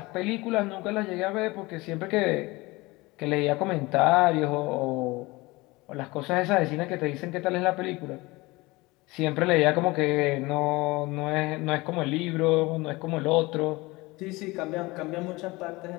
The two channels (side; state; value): right; quieter; 22.4 dB